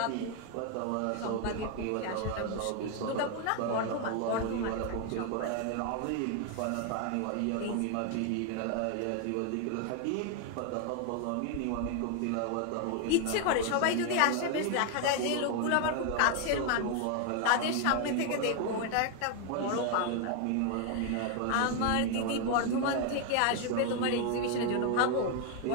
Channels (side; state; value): both; different; correlation 0.01